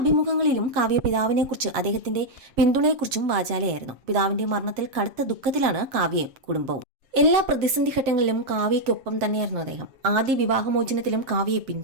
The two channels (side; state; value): left; late; 7.5 ms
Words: കാവ്യ പിതാവിനെക്കുറിച്ച് അദ്ദേഹത്തിന്റെ പിന്തുണയെക്കുറിച്ചും വാചാലയായിരുന്നു. പിതാവിന്റെ മരണത്തിൽ കടുത്ത ദുഃഖത്തിലാണ് കാവ്യയും കുടുംബവും. എല്ലാ പ്രതിസന്ധി ഘട്ടങ്ങളിലും കാവ്യയ്ക്കൊപ്പം തന്നെയായിരുന്നു അദ്ദേഹം. ആദ്യ വിവാഹമോചനത്തിലും കാവ്യയെ